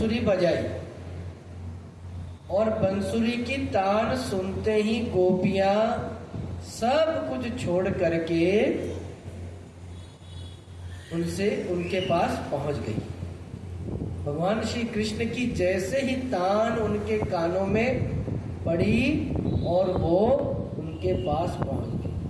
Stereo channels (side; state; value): both; identical; correlation 1.00